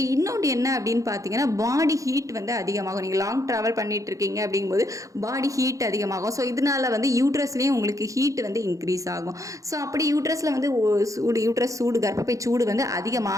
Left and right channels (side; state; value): left; late; 0.16 ms